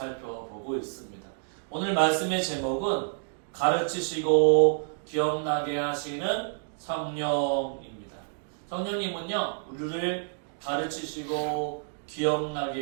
있습니다. 오늘 말씀의 제목은 가르치시고 기억나게 하시는 성령입니다. 성령님은요, 우리를 가르치시고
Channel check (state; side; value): silent; left; digital silence